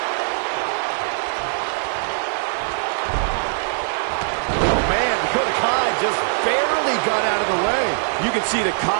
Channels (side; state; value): left; silent; 61 dB below the other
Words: Dakota Kai just barely got out of the way. You can see the